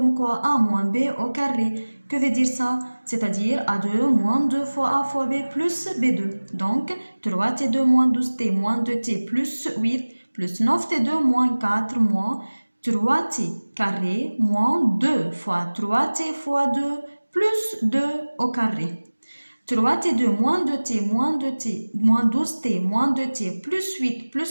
quoi? A moins B au carré. Que veut dire ça? C'est-à-dire A2 moins 2 fois A fois B plus B2. Donc, 3T2 moins 12T moins 2T plus 8 plus 9T2 moins 4 moins 3T carré moins 2 fois 3T fois 2 plus 2 au carré. 3T2 moins 2T moins 2T moins 12T moins 2T plus 8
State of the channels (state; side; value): inverted; both; correlation -1.00